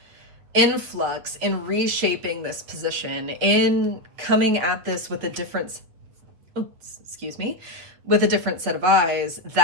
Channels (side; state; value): left; late; 8.6 ms